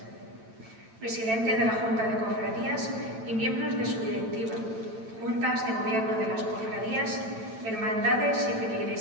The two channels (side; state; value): left; late; 9.0 ms